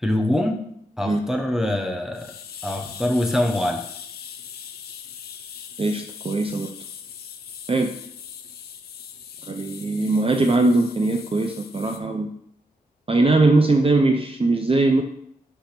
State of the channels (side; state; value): both; normal; correlation 0.82